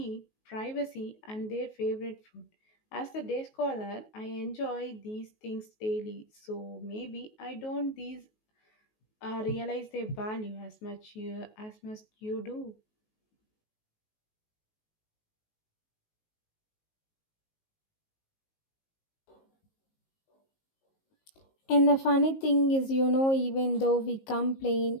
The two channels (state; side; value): late; right; 19 ms